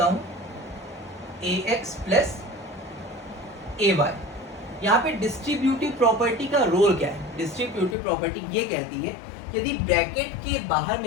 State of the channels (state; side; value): drops out; right; at 8.0 s